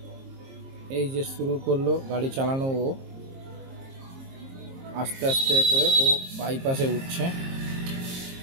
এই যে শুরু করলো গাড়ি চালানো, ও আস্তে আস্তে করে ও বাইপাসে উঠছে।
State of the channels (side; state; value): left; late; 22 ms